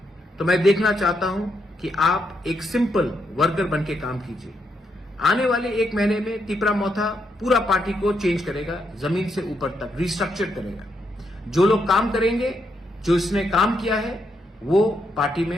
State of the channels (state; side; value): normal; both; correlation 0.79